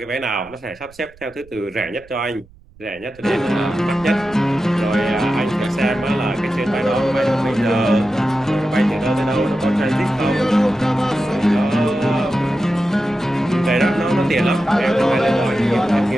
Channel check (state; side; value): noise; right; rumble, 26 dB below the sound